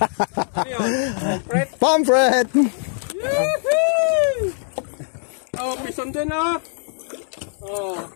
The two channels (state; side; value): silent; right; digital silence